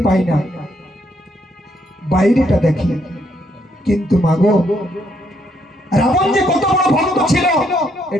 পাই না, বাইরেটা দেখি। কিন্তু মাগো, রাবণ যে কত বড় ভক্ত ছিল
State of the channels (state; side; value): normal; both; correlation 0.73